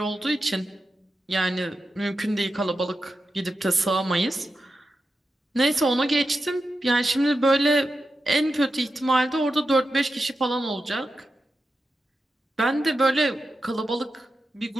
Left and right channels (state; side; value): normal; both; correlation 0.90